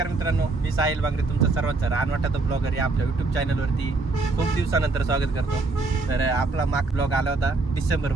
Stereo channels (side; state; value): left; quieter; 3.6 dB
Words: मित्रांनो, मी साहिल बागरे तुमचं सर्वांचं रानवाटाचा ब्लॉगर या आपल्या यूट्यूब चॅनलवरती खूप दिवसानंतर स्वागत करतो। तर आपला माग ब्लॉग आला होता डिसेंबर